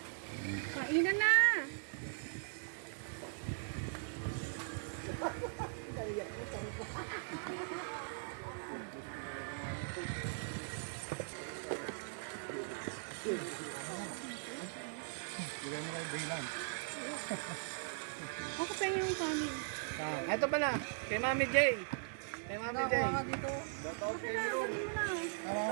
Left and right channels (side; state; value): left; silent; digital silence